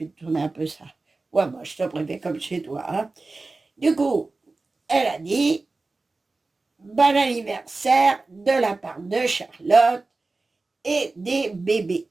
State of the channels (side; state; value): left; quieter; 3.5 dB